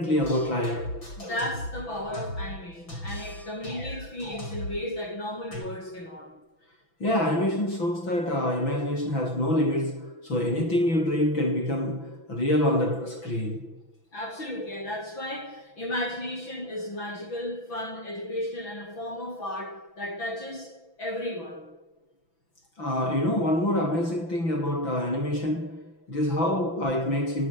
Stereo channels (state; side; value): late; right; 6.0 ms